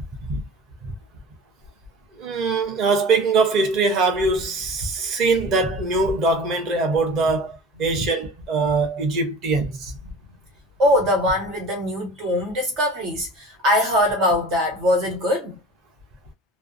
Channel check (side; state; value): both; normal; correlation 0.39